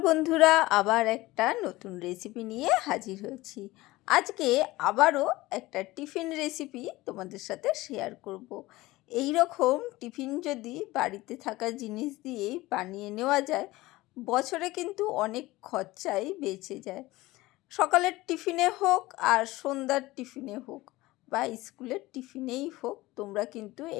বন্ধুরা, আবার একটা নতুন রেসিপি নিয়ে হাজির হয়েছি। আজকে আবারও একটা টিফিন রেসিপি তোমাদের সাথে শেয়ার করব। এই রকম টিফিন যদি বাড়িতে থাকা জিনিস দিয়েই বানিয়ে নেওয়া যায়, বছরে কিন্তু অনেক খরচাই বেঁচে যায়। সকালের টিফিনে হোক আর সন্ধ্যার টিফিনে হোক বা স্কুলের টিফিনেই হোক, তোমরা কিন্তু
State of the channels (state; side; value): quieter; right; 19.1 dB